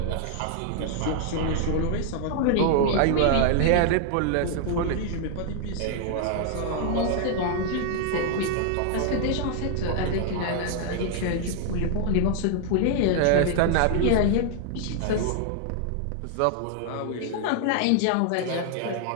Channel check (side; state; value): both; different; correlation 0.00